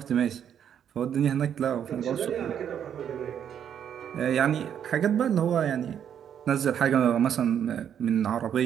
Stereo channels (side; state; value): left; quieter; 9.0 dB